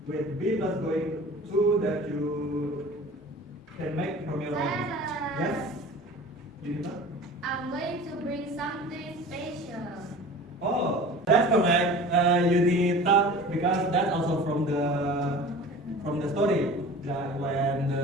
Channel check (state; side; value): normal; both; correlation 0.40